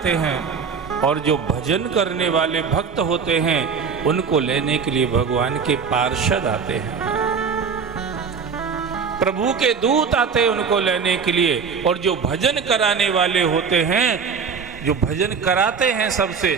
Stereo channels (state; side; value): quieter; left; 5.9 dB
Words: हैं। और जो भजन करने वाले भक्त होते हैं उनको लेने के लिए भगवान के पार्षद आते हैं, प्रभु के दूत आते हैं उनको लेने के लिए। और जो भजन कराने वाले होते हैं, जो भजन कराते हैं सबसे,